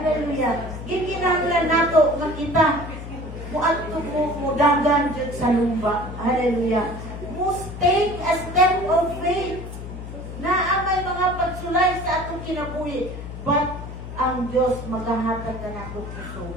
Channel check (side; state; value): left; noise; hum, 10 dB below the sound